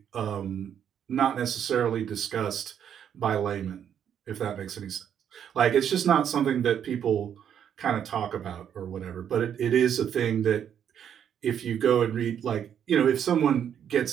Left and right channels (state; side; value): quieter; left; 8.9 dB